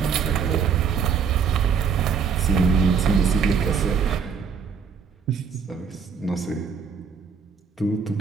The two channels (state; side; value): quieter; left; 6.3 dB